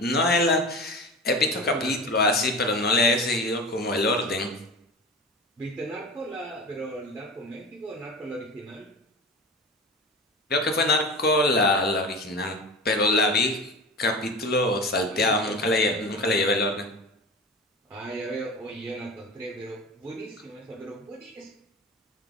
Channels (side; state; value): both; normal; correlation 0.31